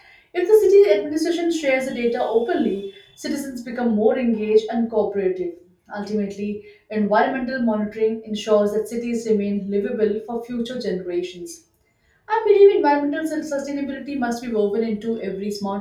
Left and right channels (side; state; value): both; identical; correlation 1.00